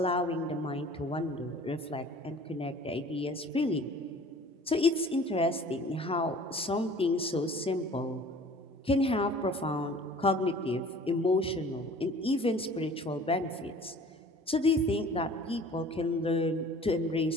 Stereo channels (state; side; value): normal; both; correlation 0.48